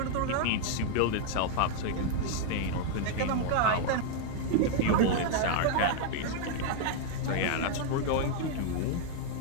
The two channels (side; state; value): both; different; correlation 0.00